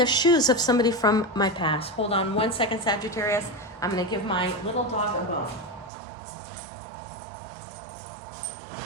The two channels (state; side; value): drops out; left; at 5.9 s